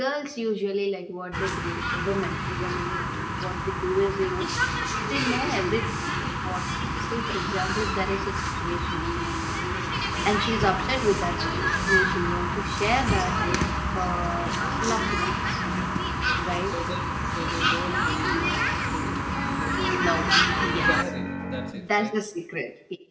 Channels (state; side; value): identical; both; correlation 1.00